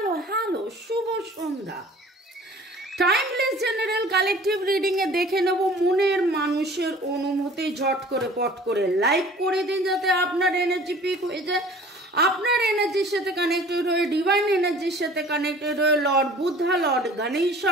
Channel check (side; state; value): both; normal; correlation 0.48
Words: hello, Shubho Sandhya. Timeless general collective reading a দেখে নেব মনের মানুষের অনুভূতি। ঝট করে পট করে লাইক করে দিন যাতে আপনার এনার্জি পিক হয়ে যায়, আপনার এনার্জির সাথে কানেক্টেড হয়ে, ডিভাইন এনার্জির সাথে কানেক্টেড হয়ে লর্ড বুদ্ধা, লর্ড